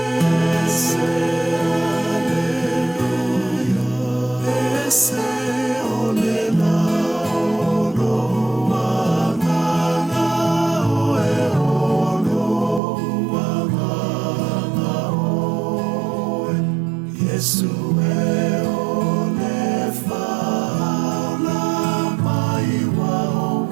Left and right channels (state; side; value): drops out; left; at 12.8 s